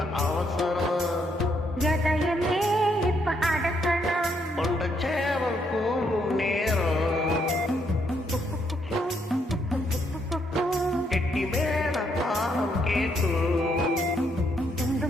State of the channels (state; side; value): normal; both; correlation 0.74